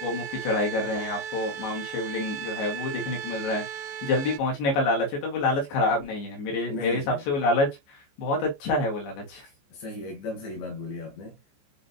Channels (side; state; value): right; late; 14 ms